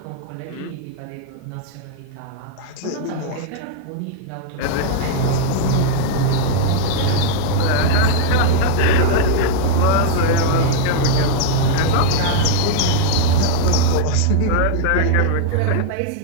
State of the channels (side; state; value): both; different; correlation 0.00